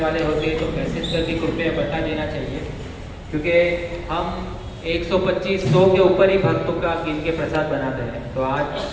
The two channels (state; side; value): identical; both; correlation 1.00